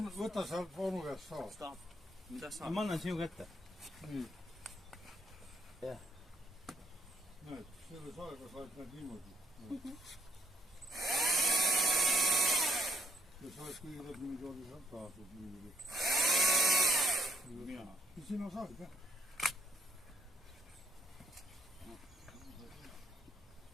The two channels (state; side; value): normal; both; correlation 0.72